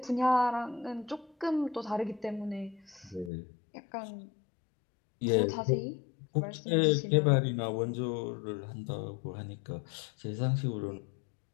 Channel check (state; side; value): drops out; right; at 3.3 s